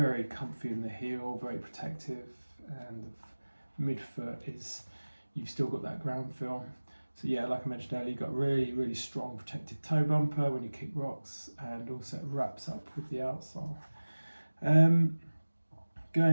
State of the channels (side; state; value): both; inverted; correlation -1.00